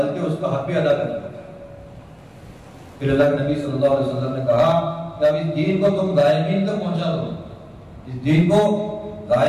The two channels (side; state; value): both; identical; correlation 1.00